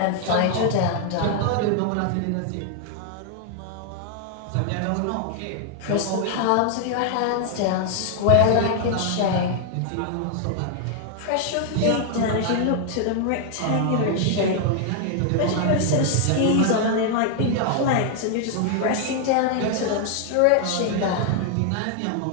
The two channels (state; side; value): different; both; correlation 0.00